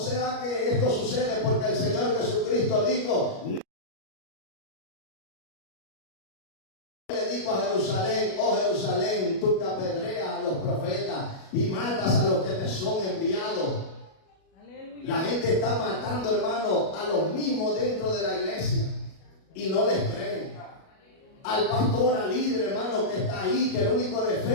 que esto sucede porque el Señor Jesucristo dijo: le dijo a Jerusalén: oh Jerusalén, tú que apedreas a los profetas y matas a los que te son enviados? Aleluya. La gente está matando, hermano, a los mismos dentro de la iglesia y no les creen. Al pastor, al líder, hermano, que está ahí, que el único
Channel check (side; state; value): right; late; 37 ms